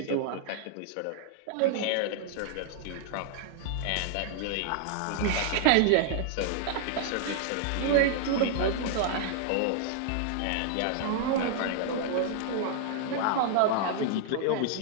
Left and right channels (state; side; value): different; both; correlation -0.01